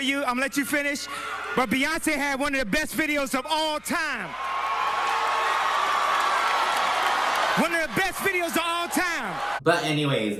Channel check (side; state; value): left; noise; hum, 29 dB below the sound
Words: I'm gonna let you finish. But Beyonce had one of the best videos of all time. One of the best videos of all time. But anyways,